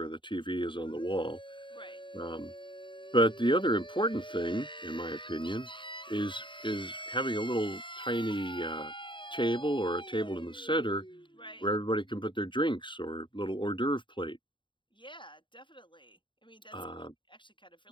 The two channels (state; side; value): late; right; 0.23 ms